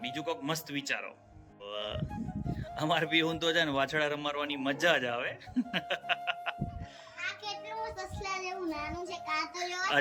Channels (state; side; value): identical; both; correlation 1.00